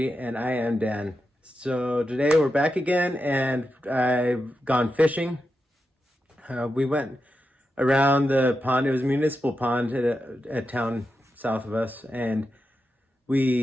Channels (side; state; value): both; normal; correlation 0.88